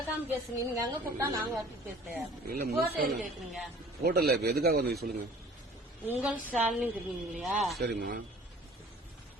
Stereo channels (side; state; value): both; normal; correlation 0.49